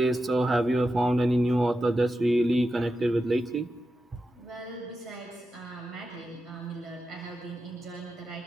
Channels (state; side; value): normal; both; correlation 0.90